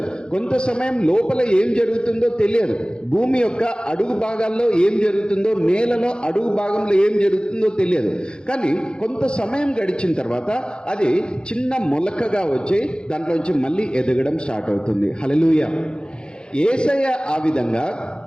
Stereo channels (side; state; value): right; late; 0.050 ms